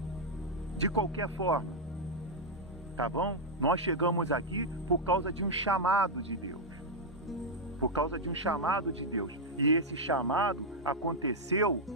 De qualquer forma. Tá bom? Nós chegamos aqui por causa de um chamado de Deus. Por causa de um chamado de Deus. E esse chamado aconteceu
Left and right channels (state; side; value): normal; both; correlation -0.02